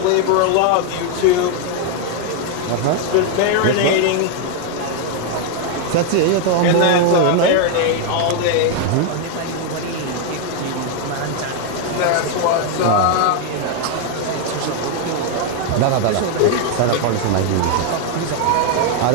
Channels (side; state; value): both; different; correlation 0.01